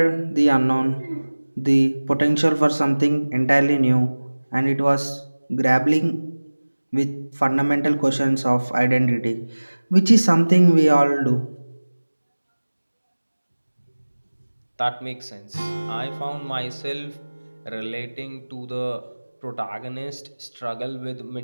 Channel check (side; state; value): both; inverted; correlation -1.00